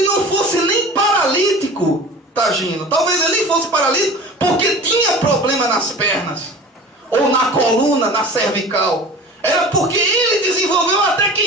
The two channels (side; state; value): both; normal; correlation 0.38